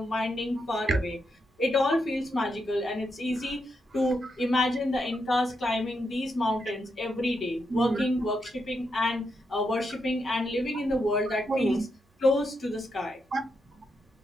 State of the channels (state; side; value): normal; both; correlation 0.83